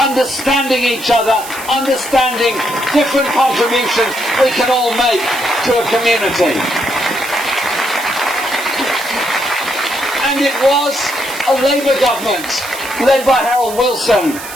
each other, understanding different contributions we can all make to a community. And it was a Labour government led by Harold Wilson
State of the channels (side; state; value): right; noise; hiss, 12 dB below the sound